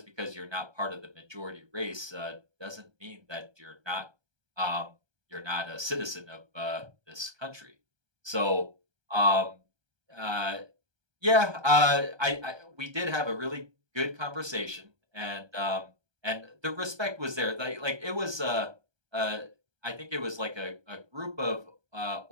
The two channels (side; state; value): left; late; 1.3 ms